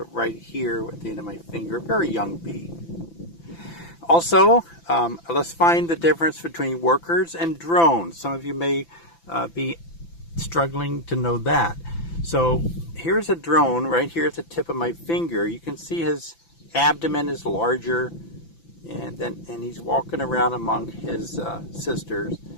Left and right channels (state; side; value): late; right; 5.9 ms